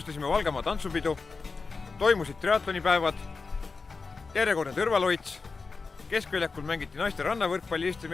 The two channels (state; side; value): quieter; right; 4.4 dB